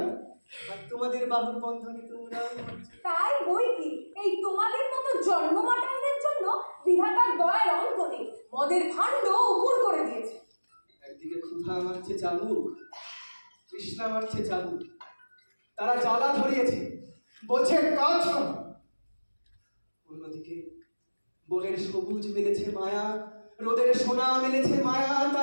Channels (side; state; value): both; inverted; correlation -1.00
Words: আর তোমাদের বাহুর বন্ধনে তোমরা। তাই বই কি, এই তোমাদের মতো জন্মমাতাদের জন্য বিধাতার দয়ার অন্ত নেই, মদের ভাণ্ড উপুর করে দিয়েছে। একদিকে ক্ষুধা মারছে চাবুক, তৃষ্ণা মারছে চাবুক, তারা জ্বালা ধরিয়েছে, বলছে কাজ কর। অন্যদিকে বনের সবুজ মেলেছে মায়া, রোদের সোনা মেলেছে মায়া,